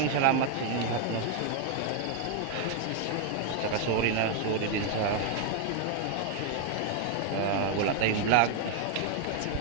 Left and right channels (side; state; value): both; different; correlation 0.00